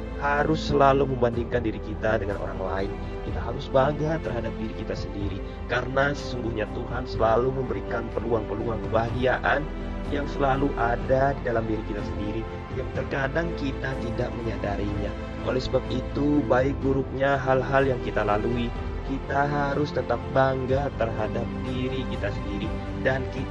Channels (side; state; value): both; identical; correlation 1.00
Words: harus selalu membandingkan diri kita dengan orang lain. Kita harus bangga terhadap diri kita sendiri, karena sesungguhnya Tuhan selalu memberikan peluang-peluang kebahagiaan yang selalu ada di dalam diri kita sendiri, yang terkadang kita tidak menyadarinya. Oleh sebab itu, baik buruknya hal-hal yang kita lalui, kita harus tetap bangga terhadap diri kita sendiri, dan